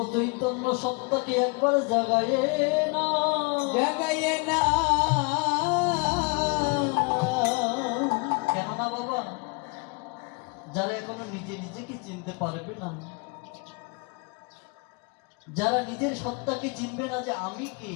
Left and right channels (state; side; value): quieter; right; 31.4 dB